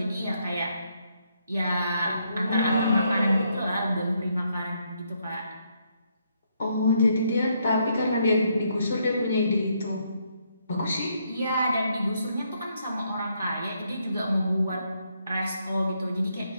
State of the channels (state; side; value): inverted; both; correlation -0.75